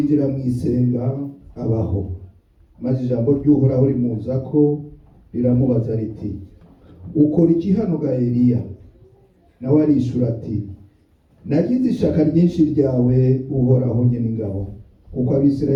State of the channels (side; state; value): both; identical; correlation 1.00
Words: mu isenga abaho, maze ijambo ry'Uhoraho rimuza ko riramubaza riti, ukora iki hano ga Eliya? Nawe arishura ati, nagize ishaka ryinshi ryawe Uhoraho Nyeningabo, kuko